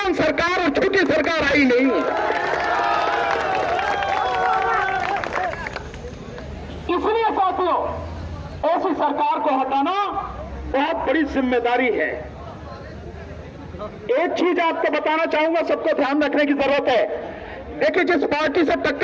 सरकार और झूठी सरकार आई नहीं। इसलिए साथियों, ऐसी सरकार को हटाना बहुत बड़ी जिम्मेदारी है। एक चीज आपको बताना चाहूंगा, सबको ध्यान रखने की जरूरत है। देखिए, जिस पार्टी से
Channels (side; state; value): both; identical; correlation 1.00